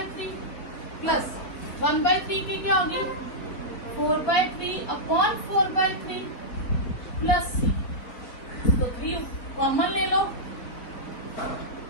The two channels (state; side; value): late; right; 4.0 ms